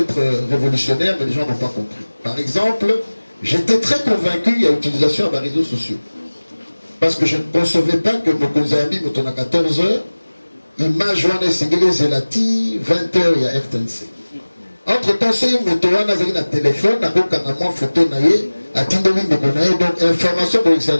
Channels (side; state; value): both; inverted; correlation -1.00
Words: révolutionnaires, mais les gens n'ont pas compris. Par exemple, j'étais très convaincu qu'il y a utilisation des réseaux sociaux. Parce que je ne concevais pas que mon Konzami, à 14h, il m'a joint à Zelati, 20h, il y a RTNC. Entre-temps, c'est une motoana, il y a un téléphone, il y a un photo, donc information pour que ça